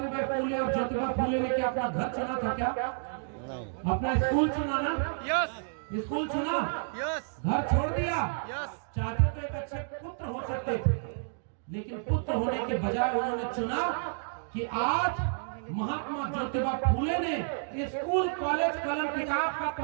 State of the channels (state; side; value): silent; left; digital silence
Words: फूले और ज्योतिबा फूले ने क्या अपना घर चुना था क्या? अपना स्कूल चुना ना? यस स्कूल चुना, यस घर छोड़ दिया। यस चाहते तो एक अच्छे पुत्र हो सकते थे, लेकिन पुत्र होने के बजाय उन्होंने चुना कि आज महात्मा ज्योतिबा फूले ने स्कूल कॉलेज कलम किताब का